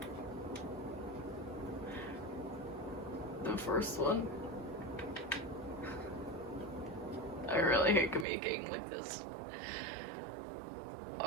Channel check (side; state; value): left; drops out; at 8.2 s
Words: The first one? I really hate communicating like this.